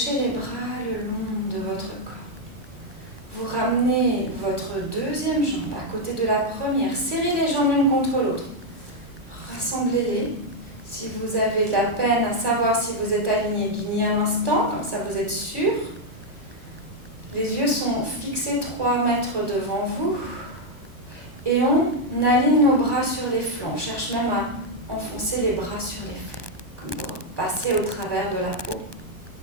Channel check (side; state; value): left; late; 1.2 ms